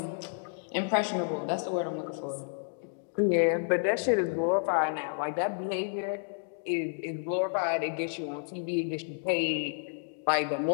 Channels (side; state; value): right; silent; digital silence